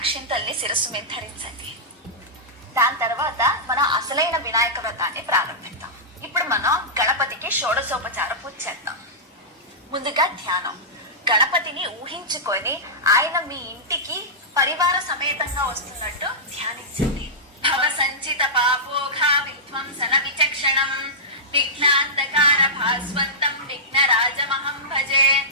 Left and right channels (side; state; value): both; normal; correlation -0.14